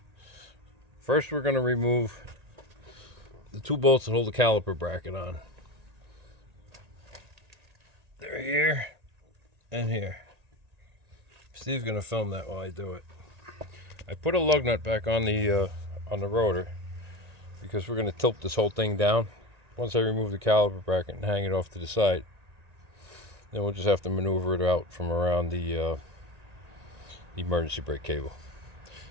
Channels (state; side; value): late; left; 1.8 ms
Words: First, we're going to remove the two bolts that hold the caliper bracket on. They're here and here. Steve's going to film that while I do it. I put a lug nut back on the rotor because we're going to tilt this whole thing down. Once I remove the caliper bracket and hang it off to the side, then we'll just have to maneuver it out from around the emergency brake cable.